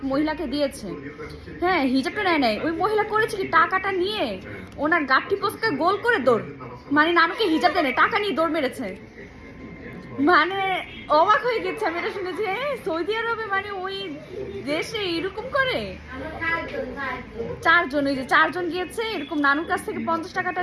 মহিলাকে দিয়েছে। হ্যাঁ, হিজাবটা নেয় নাই। ওই মহিলা করেছে কি, টাকাটা নিয়ে ওনার গাঠি পোস্টকে গোল করে দৌড়, মানে নানুকে হিজাব দেয় নাই, টাকা নিয়ে দৌড় মেরেছে। মানে অবাক হয়ে গেছে আমি এটা শুনেছি। সৌদি আরবে মানে ওই দেশে এরকম করে। চারজন, ওই যে চারজন গিয়েছে এরকম, নানুর কাছ থেকে 50 টাকাটা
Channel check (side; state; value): both; identical; correlation 1.00